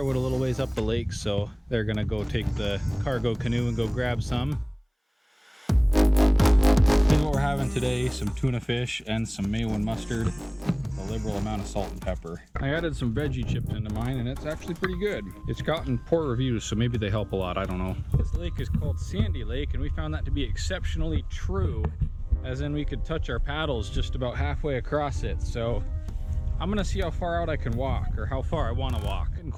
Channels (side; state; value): both; identical; correlation 1.00